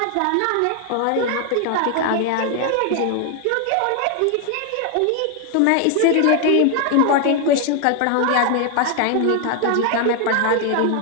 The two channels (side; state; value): both; different; correlation 0.00